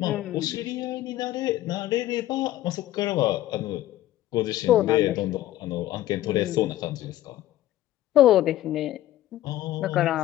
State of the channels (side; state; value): right; quieter; 14.3 dB